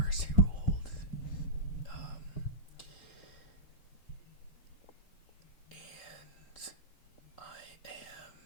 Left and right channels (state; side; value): late; right; 3.8 ms